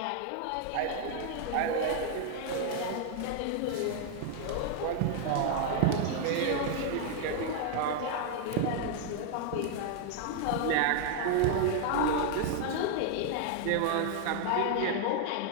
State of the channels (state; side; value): different; both; correlation 0.00